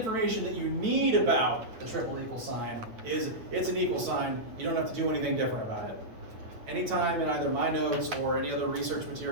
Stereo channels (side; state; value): left; late; 9.1 ms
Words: that you need about the triple equal sign is it's an equal sign. You don't have to do anything different about it. Anytime in either my notes or any other research